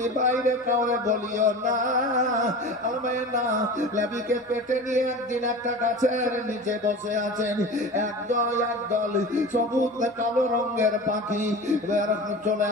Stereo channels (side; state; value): both; normal; correlation 0.33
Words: বাইরে কাউরে বলিও না। আমেনা নবীকে পেটে নিয়ে একদিন একটা গাছের নিচে বসে আছেন, একদল সবুজ কালো রঙের পাখি চলে